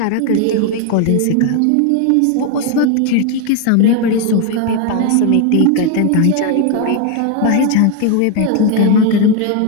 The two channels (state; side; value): different; both; correlation 0.01